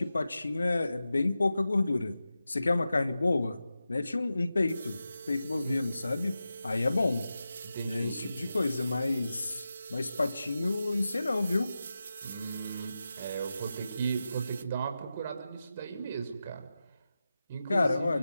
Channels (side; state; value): both; inverted; correlation -0.92